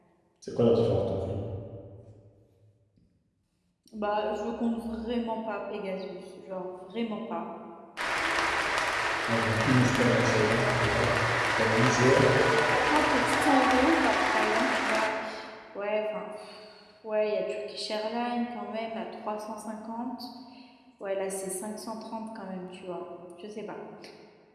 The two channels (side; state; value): both; identical; correlation 1.00